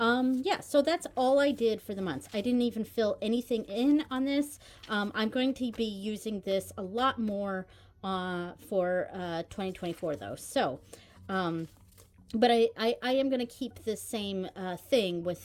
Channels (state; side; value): identical; both; correlation 1.00